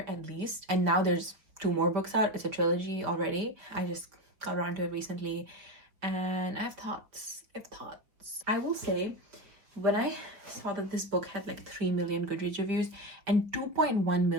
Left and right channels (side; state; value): left; late; 4.9 ms